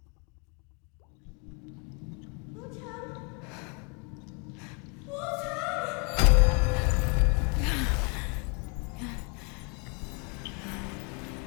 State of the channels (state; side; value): quieter; right; 33.9 dB